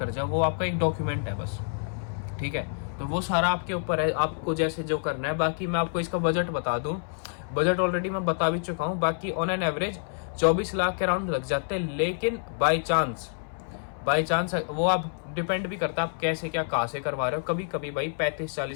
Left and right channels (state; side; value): silent; right; 60 dB below the other